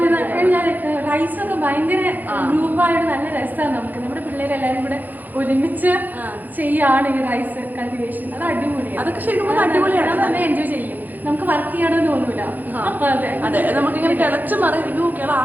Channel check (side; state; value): left; late; 0.084 ms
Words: റൈസ് ഒക്കെ ഭയങ്കര ഗ്രൂപ്പായിട്ട് നല്ല രസമാണ്. നമുക്ക് നമ്മുടെ പിള്ളേരെല്ലാവരും കൂടെ ഒരുമിച്ച് ചെയ്യാണ് ഈ റൈസ് കൾട്ടിവേഷൻ. അത് അടിപൊളിയാണ്. അതൊക്കെ ശരിക്കും അടിപൊളിയാണ്. നല്ല എൻജോയ് ചെയ്യും. നമുക്ക് വർക്ക് ചെയ്യണമെന്ന് തോന്നൂല. അതെ, നമുക്കിങ്ങനെ കിളച്ച് മറിയുക ആ